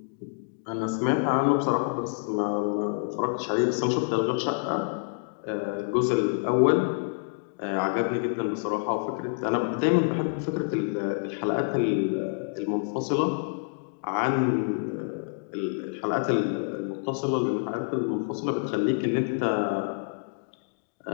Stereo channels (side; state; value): right; silent; digital silence